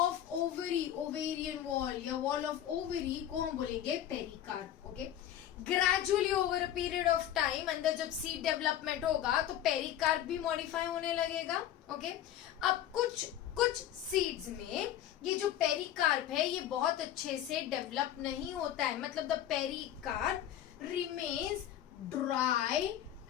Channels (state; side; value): quieter; right; 11.4 dB